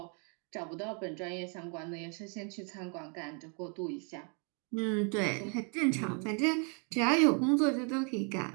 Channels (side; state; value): left; quieter; 38.4 dB